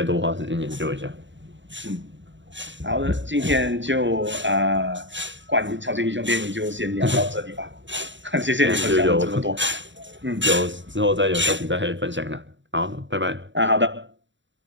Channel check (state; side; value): late; left; 0.54 ms